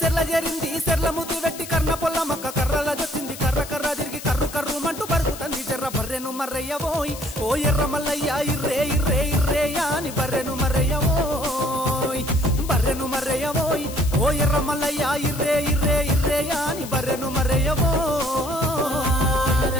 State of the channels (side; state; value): left; noise; hiss, 13 dB below the sound